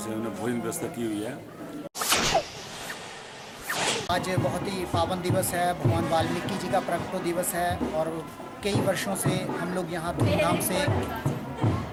उन्होंने भोजन व्यवस्था की हुई है। आज बहुत ही पावन दिवस है, भगवान वाल्मीकि जी का प्रकटो दिवस है और कई वर्षों से हम लोग यहाँ धूमधाम से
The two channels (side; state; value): both; identical; correlation 1.00